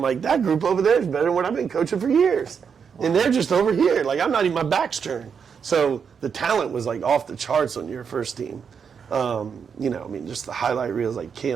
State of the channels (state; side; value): quieter; left; 6.6 dB